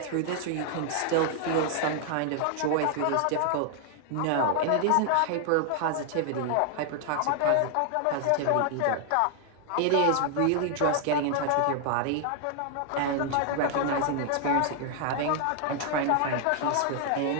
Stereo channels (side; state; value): both; different; correlation 0.00